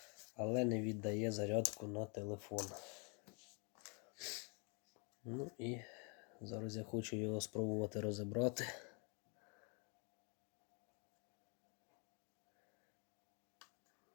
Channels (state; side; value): quieter; right; 34.5 dB